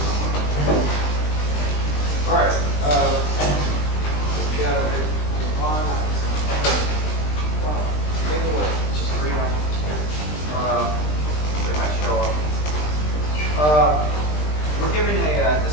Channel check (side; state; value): right; late; 20 ms